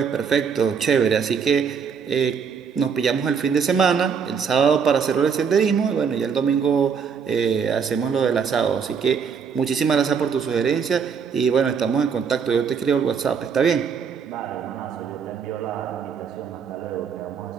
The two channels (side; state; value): left; quieter; 6.5 dB